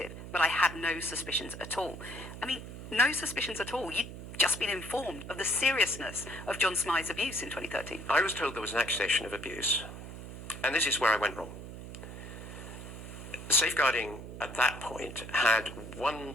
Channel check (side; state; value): right; noise; hum, 11 dB below the sound